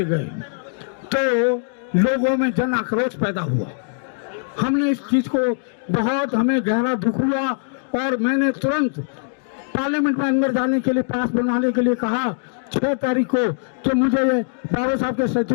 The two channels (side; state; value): right; silent; digital silence